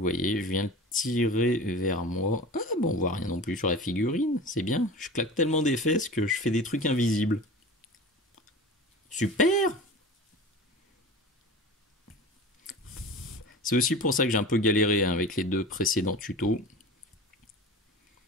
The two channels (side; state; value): both; normal; correlation 0.35